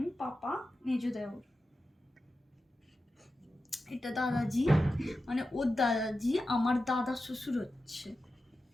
পাপা, মেজো দেওর। এটা দাদাজি, মানে ওর দাদাজি আমার দাদা শ্বশুর হচ্ছে।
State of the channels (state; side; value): normal; both; correlation 0.92